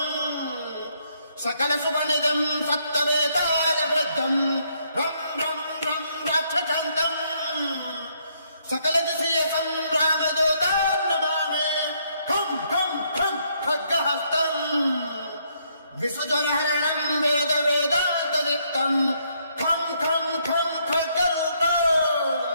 సకల సువనిదం సప్తవేతాల వృద్ధం రం రం రం రాక్షసాంతం సకల దిశీయ సంగ్రామదూతాం నమామి ఖం ఖం ఖం ఖడ్గహస్తం విసుజనహరణం వేద వేదాంతదీప్తం ఖం ఖం ఖం ఖడ్గరూపం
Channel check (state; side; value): inverted; both; correlation -0.72